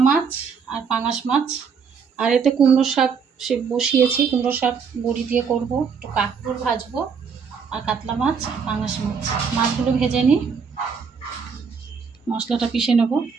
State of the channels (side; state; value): left; quieter; 6.0 dB